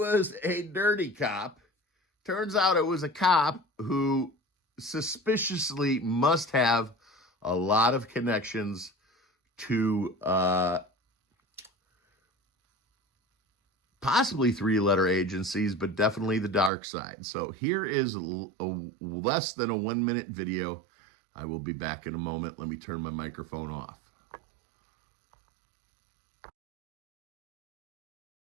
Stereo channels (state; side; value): drops out; left; at 16.7 s